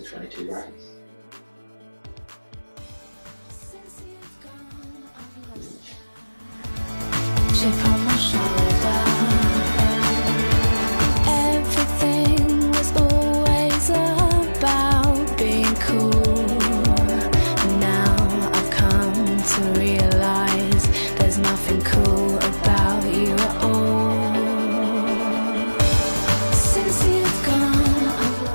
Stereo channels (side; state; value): both; inverted; correlation -1.00